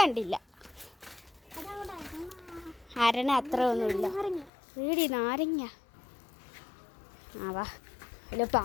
കണ്ടില്ല. അരണ അത്ര ഒന്നുമില്ല. വീടി നാരങ്ങ. ആ വാ, അല്ല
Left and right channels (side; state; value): right; drops out; at 4.5 s